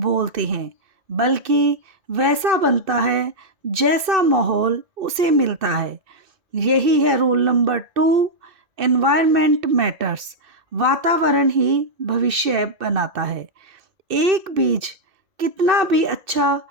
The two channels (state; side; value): late; left; 2.6 ms